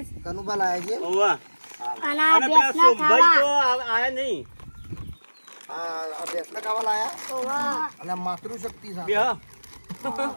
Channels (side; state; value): both; inverted; correlation -1.00